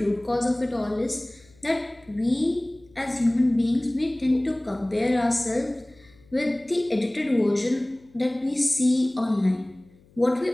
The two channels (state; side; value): noise; left; hum, 29 dB below the sound